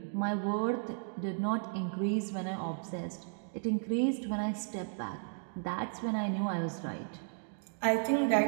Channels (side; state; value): left; silent; digital silence